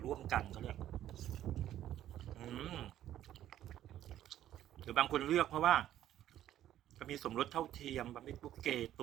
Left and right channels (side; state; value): left; quieter; 12.1 dB